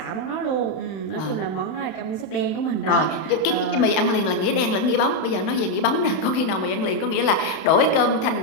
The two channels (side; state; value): right; late; 31 ms